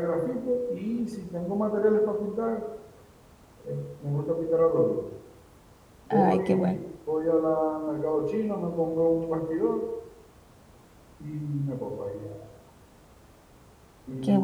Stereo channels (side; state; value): both; identical; correlation 1.00